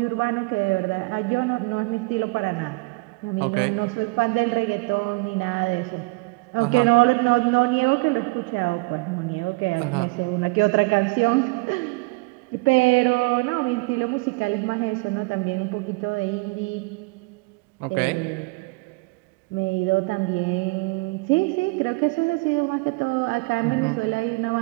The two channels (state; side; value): quieter; left; 26.9 dB